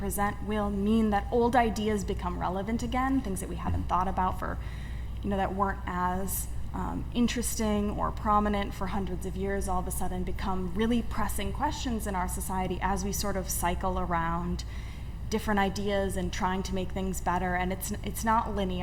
will mean that old ideas become relevant again, things that we haven't thought about for, that weren't as interesting or prominent for hundreds of years, all of a sudden become really pressing questions in our society as we sort of cycle around different ideas and trying to make things better. And it's not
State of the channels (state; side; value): identical; both; correlation 1.00